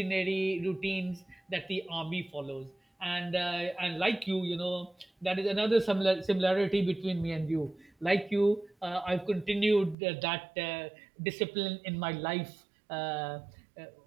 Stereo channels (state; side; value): drops out; left; at 10.0 s